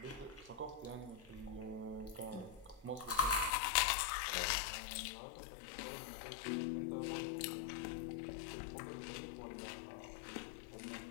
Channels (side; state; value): right; drops out; at 3.5 s